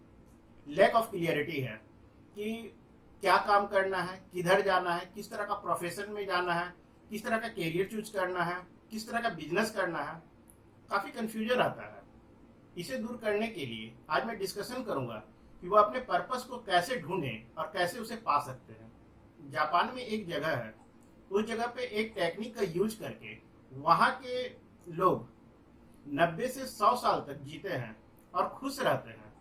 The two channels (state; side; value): identical; both; correlation 1.00